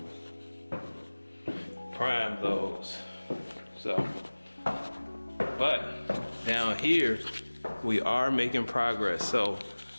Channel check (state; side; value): inverted; both; correlation -1.00